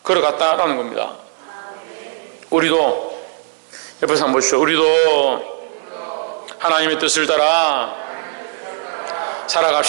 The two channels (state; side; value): silent; left; 64 dB below the other